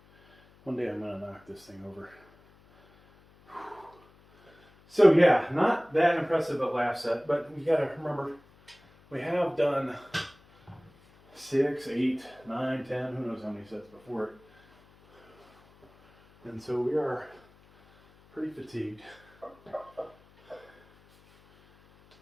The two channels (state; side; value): noise; left; hum, 28 dB below the sound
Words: One day I'm gonna knock this thing over. So yeah, not that impressive at last set, but we gotta remember, we have done 6, 8, 9, 10, who knows how many sets before it. And so we are pretty fatigued.